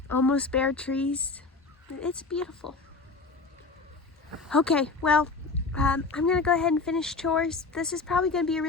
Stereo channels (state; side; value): quieter; right; 4.0 dB